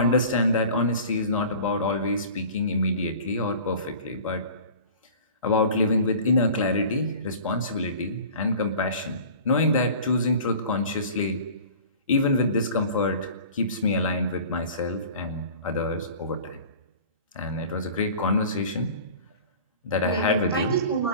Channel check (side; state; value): both; inverted; correlation -0.42